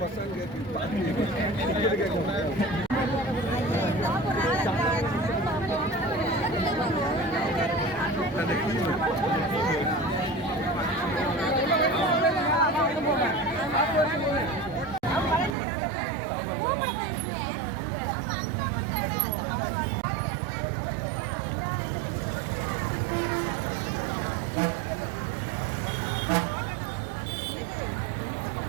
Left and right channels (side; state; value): left; drops out; at 15.6 s